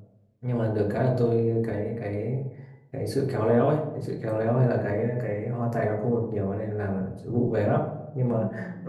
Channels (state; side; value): identical; both; correlation 1.00